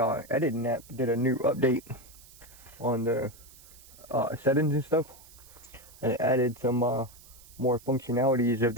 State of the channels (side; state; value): right; noise; hiss, 22 dB below the sound